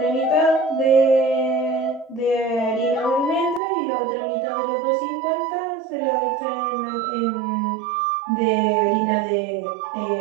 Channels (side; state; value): left; drops out; at 3.6 s